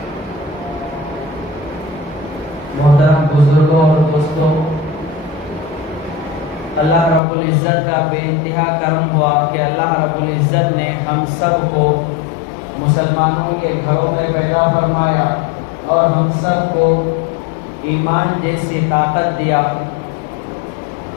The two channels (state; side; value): drops out; right; at 7.2 s